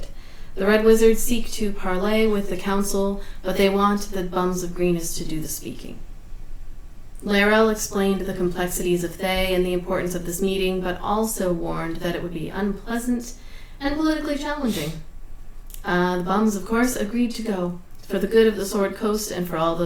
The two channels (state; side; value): identical; both; correlation 1.00